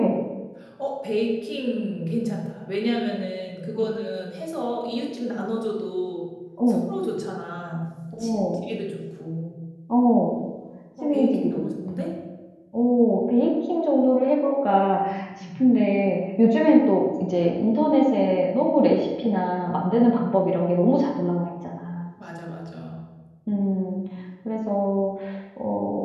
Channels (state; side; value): identical; both; correlation 1.00